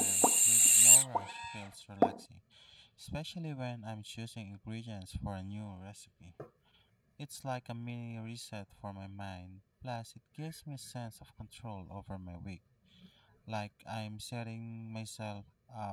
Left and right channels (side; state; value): both; identical; correlation 1.00